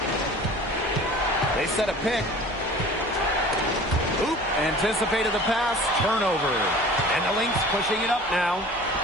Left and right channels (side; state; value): both; normal; correlation 0.43